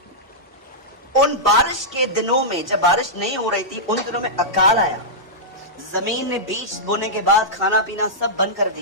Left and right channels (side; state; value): both; normal; correlation -0.11